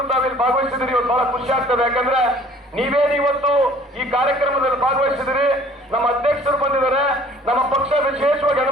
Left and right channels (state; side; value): normal; both; correlation 0.53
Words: ತಾವಿಲ್ಲಿ ಭಾಗವಹಿಸಿದಿರಿ. ಇವತ್ತು ಬಹಳ ಖುಷಿ ಆಗ್ತದೆ. ಯಾಕಂದ್ರೆ ನೀವೇನು ಇವತ್ತು ಈ ಕಾರ್ಯಕ್ರಮದಲ್ಲಿ ಭಾಗವಹಿಸಿದಿರಿ. ನಮ್ಮ ಅಧ್ಯಕ್ಷರು ಬಂದಿದ್ದಾರೆ. ನಮ್ಮ ಪಕ್ಷ ವಿಶೇಷವಾಗಿ